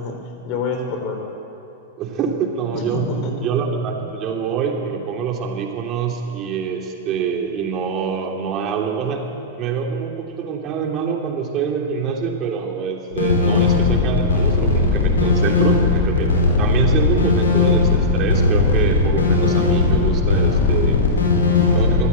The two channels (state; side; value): normal; both; correlation -0.17